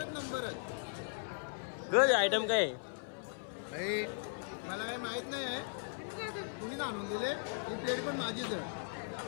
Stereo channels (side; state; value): right; silent; 53 dB below the other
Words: नंबर गज आयटम काय मला काही माहित नाही तुम्ही आणून दिले. ही प्लेट पण माझीच आहे.